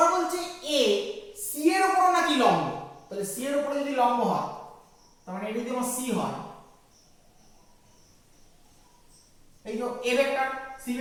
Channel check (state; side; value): identical; both; correlation 1.00